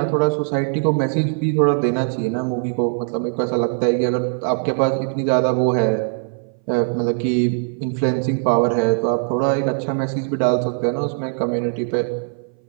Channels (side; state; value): left; silent; 60 dB below the other